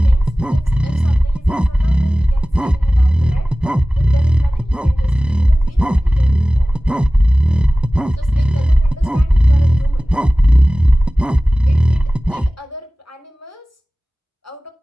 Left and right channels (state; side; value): normal; both; correlation 0.97